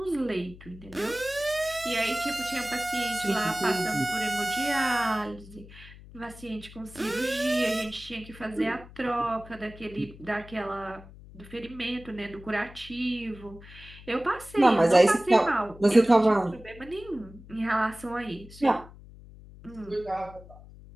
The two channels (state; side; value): noise; left; hum, 19 dB below the sound